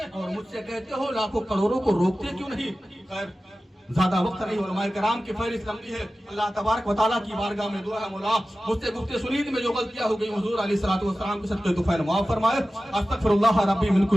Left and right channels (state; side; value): normal; both; correlation 0.95